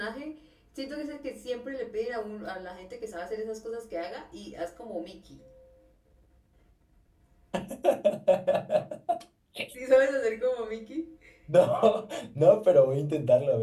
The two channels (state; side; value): identical; both; correlation 1.00